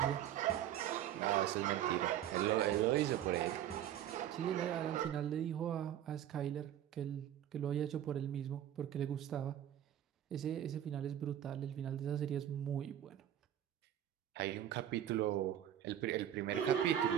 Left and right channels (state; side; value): quieter; left; 11.0 dB